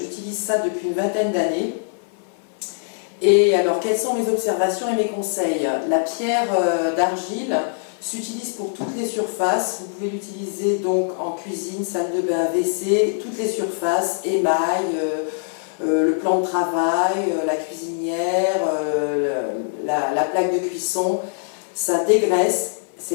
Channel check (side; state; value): right; silent; 61 dB below the other